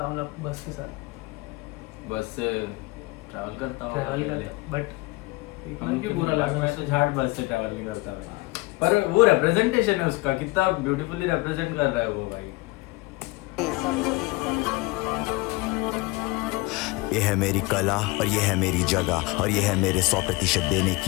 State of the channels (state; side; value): quieter; right; 22.9 dB